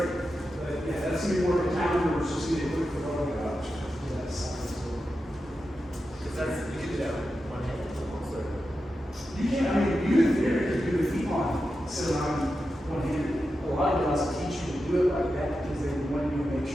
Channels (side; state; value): both; normal; correlation 0.90